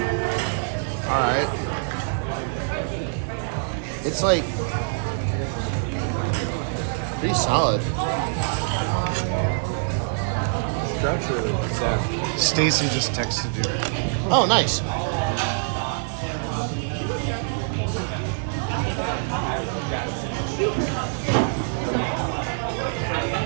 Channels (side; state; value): left; silent; 62 dB below the other